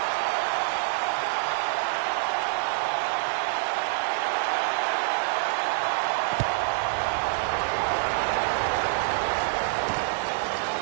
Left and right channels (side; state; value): left; silent; digital silence